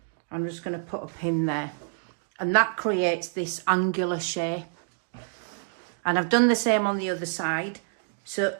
I'm just going to put a pin there, and that creates this angular shape. And I've done the same on the other side. So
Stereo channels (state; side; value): silent; left; digital silence